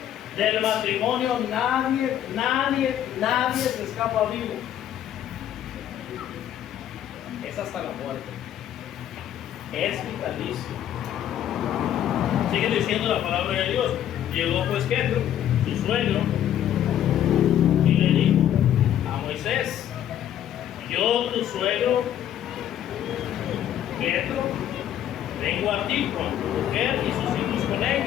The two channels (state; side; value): quieter; right; 10.9 dB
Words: Del matrimonio nadie se escapa vivo. Es hasta la muerte. Es vitalicio. Sigue diciendo la palabra de Dios. Llegó pues Jetro, su suegro, y le dijo a Moisés, yo tu suegro Jetro, vengo a ti con tu mujer y sus hijos con